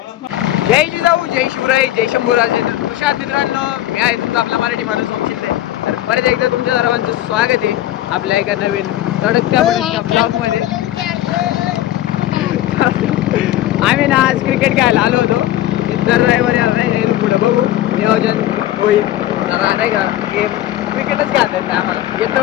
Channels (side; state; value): right; quieter; 13.9 dB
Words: जय जिजाऊ, जय शिवराय, जय शंभूराजे. तर नमस्कार मित्रांनो, मी आहे तुमचा आपला मराठी माणूस शिंदे. तर परत एकदा तुमच्या सर्वांचं स्वागत आहे आपल्या एका नवीन तडकत्या ब्लॉग मध्ये. आम्ही ना आज क्रिकेट खेळायला आलो होतो. दर रविवारी आलो पुढे बघू नियोजन होईल. नाही का गेम क्रिकेटच खेळता येत आम्हाला.